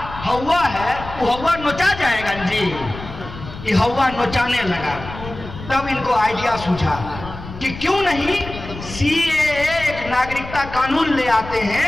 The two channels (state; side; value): noise; left; rumble, 12 dB below the sound